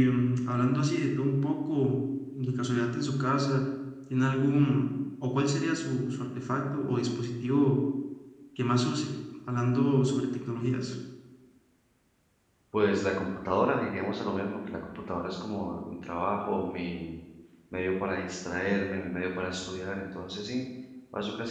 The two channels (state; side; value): identical; both; correlation 1.00